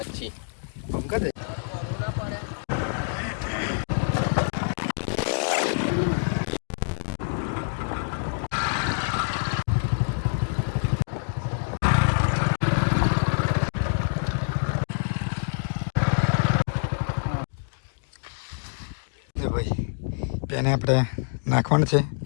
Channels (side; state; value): right; silent; digital silence